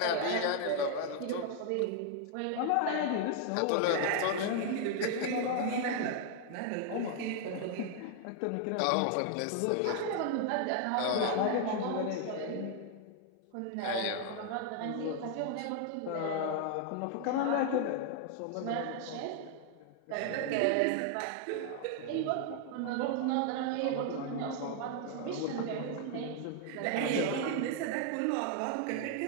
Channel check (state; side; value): different; both; correlation 0.00